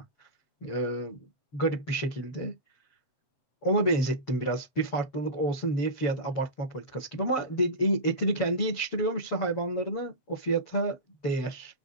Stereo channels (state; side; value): late; right; 7.1 ms